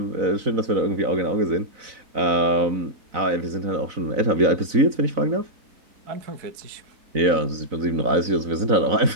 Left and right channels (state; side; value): late; left; 4.0 ms